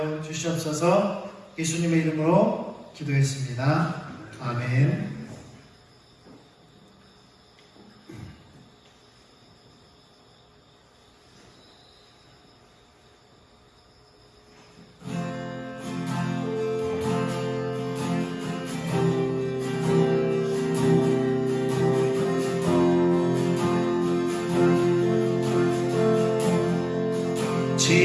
주시옵소서. 예수님의 이름으로 기도했습니다. 아멘.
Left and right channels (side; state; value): both; identical; correlation 1.00